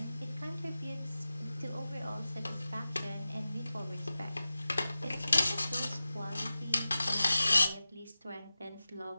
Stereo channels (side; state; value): both; inverted; correlation -0.95